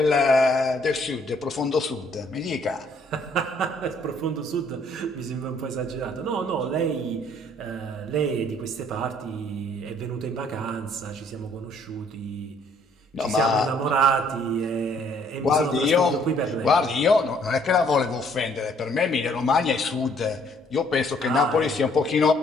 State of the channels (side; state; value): both; normal; correlation 0.63